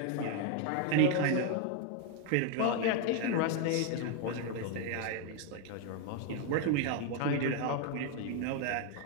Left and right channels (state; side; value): different; both; correlation 0.01